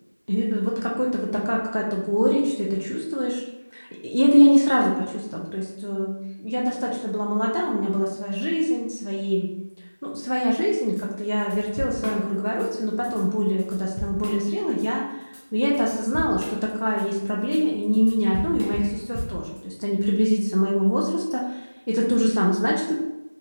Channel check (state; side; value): inverted; both; correlation -1.00